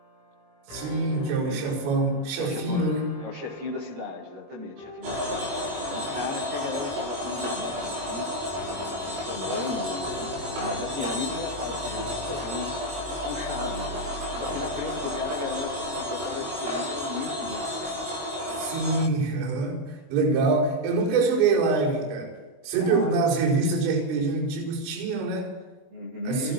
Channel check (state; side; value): late; left; 22 ms